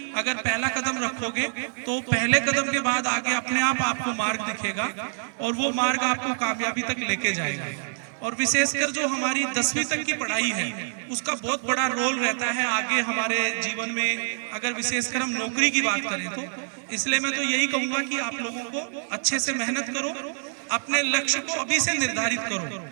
अगर पहला कदम रखोगे तो पहले कदम के बाद आगे अपने आप आपको मार्ग दिखेगा और वो मार्ग आपको कामयाबी तक लेके जाएगा। और विशेषकर जो हमारी 10वीं तक की पढ़ाई है उसका बहुत बड़ा रोल रहता है आगे हमारे जीवन में, अगर विशेषकर हम नौकरी की बात करें तो। इसलिए मैं तो यही कहूंगा कि आप लोगों को अच्छे से मेहनत करो, अपने लक्ष्य को अभी से निर्धारित करो,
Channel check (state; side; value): silent; left; 61 dB below the other